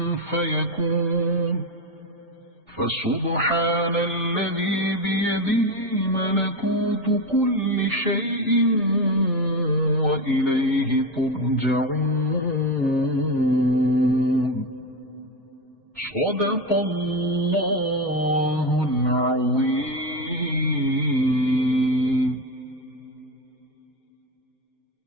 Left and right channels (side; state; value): both; normal; correlation 0.15